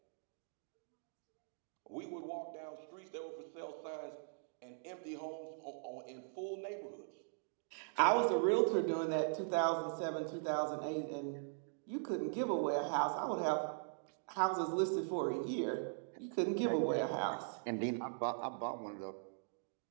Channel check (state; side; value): silent; left; digital silence